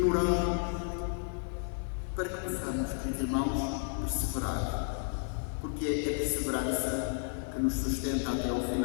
para que possamos, queridos irmãos, perseverar, porque é a perseverança que nos sustenta até ao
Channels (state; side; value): silent; right; 56 dB below the other